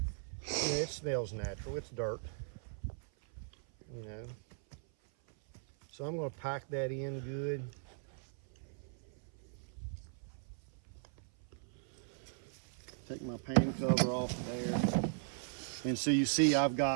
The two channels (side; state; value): left; silent; 52 dB below the other